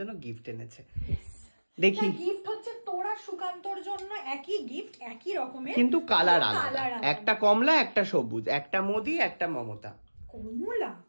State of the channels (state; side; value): inverted; both; correlation -1.00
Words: গিফট এনেছে, দেখি গিফট হচ্ছে তোরা সুকান্তর জন্য একই গিফট, একই রকমের কিন্তু কালার আলাদা, একটা কমলা একটা সবুজ, একটা মোদি একটা মমতা। কমলা?